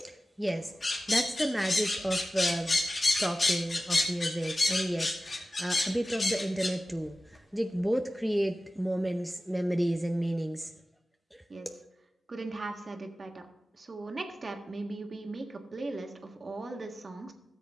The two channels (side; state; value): both; normal; correlation 0.95